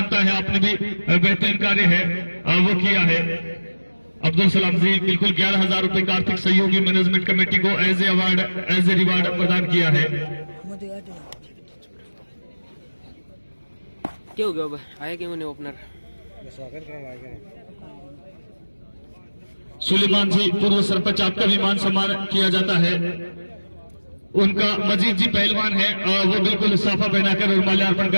है, आपने भी बेहतरीन कार्य है वो किया है। अब्दुल सलाम जी बिल्कुल 11,000 रुपए का आर्थिक सहयोगी मैनेजमेंट कमेटी को एज ए रिवार्ड प्रदान किया है। क्या हो गया आया क्यों नहीं ओपनर? सुलेमान जी पूर्व सरपंच, आपका भी मान सम्मान किया जाता है। उनका मजीद जी पहलवान है, वो बिल्कुल साफा पहनाकर और माल्यार्पण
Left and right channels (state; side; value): inverted; both; correlation -1.00